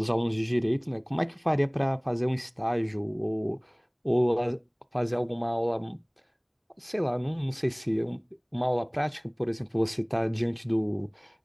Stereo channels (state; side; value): identical; both; correlation 1.00